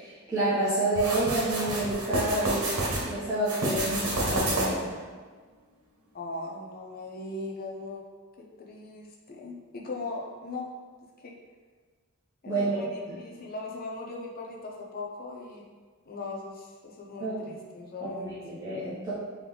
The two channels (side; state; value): both; normal; correlation 0.04